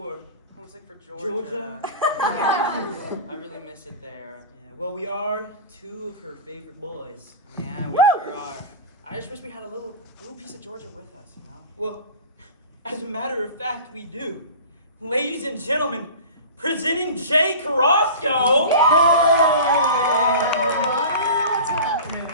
Homesick for Georgia. Georgia? I really miss it there. Yeah, well, we are two of her favorite boys. Yeah, we sure are. I just wish we had a little piece of Georgia with us, you know? Well, as a matter of fact, we do. Ladies and gentlemen, presenting Jay Carrasco. What's happening?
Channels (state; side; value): inverted; both; correlation -0.34